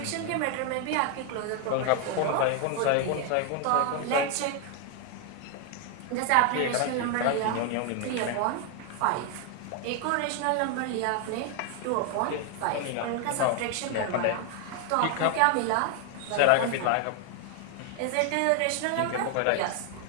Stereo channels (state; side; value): different; both; correlation 0.00